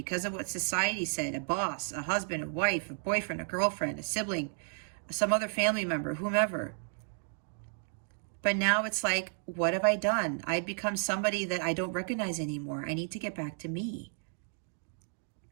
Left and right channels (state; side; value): silent; left; 56 dB below the other